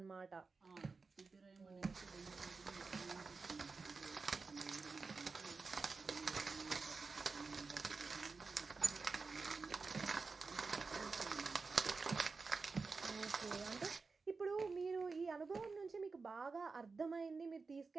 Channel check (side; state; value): left; quieter; 4.4 dB